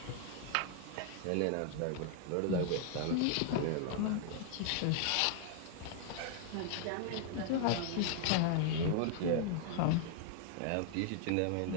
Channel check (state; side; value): different; both; correlation 0.00